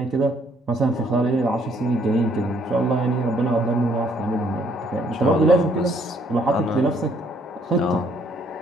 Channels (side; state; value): both; normal; correlation 0.66